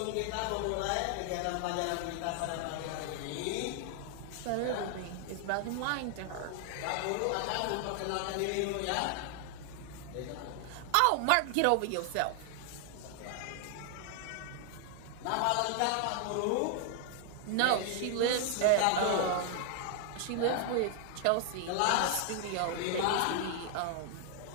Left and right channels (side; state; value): both; different; correlation 0.00